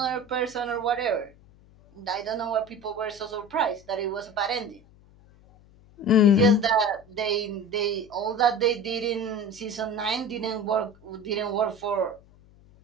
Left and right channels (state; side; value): noise; left; hum, 26 dB below the sound